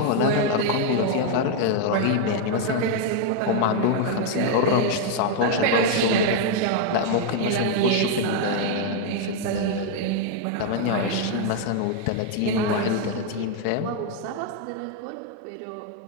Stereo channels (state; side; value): different; both; correlation 0.00